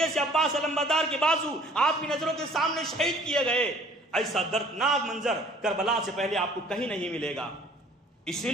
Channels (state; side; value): normal; both; correlation 0.53